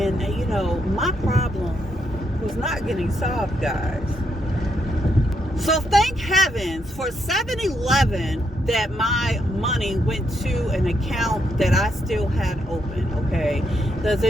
you know, my problem was not getting solved, guys. So thank heavens for 7-Eleven that my money went to an account that I still had open, okay? Because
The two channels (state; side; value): normal; both; correlation 0.78